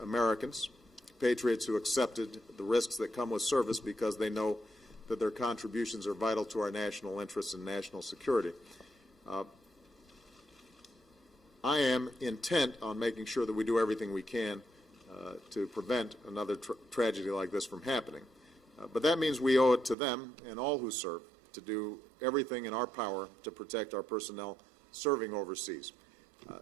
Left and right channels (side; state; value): left; drops out; at 20.0 s